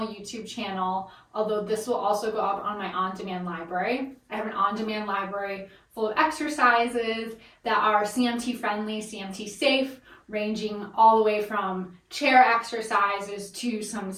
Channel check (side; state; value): both; identical; correlation 1.00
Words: channel, although this will also go up on my on-demand library. I have an on-demand library full of exercises that are CMT friendly, CMT safe, ranging all the way from chair exercises to some